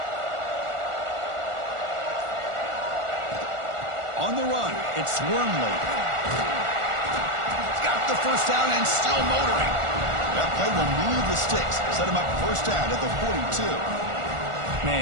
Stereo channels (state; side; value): late; left; 1.4 ms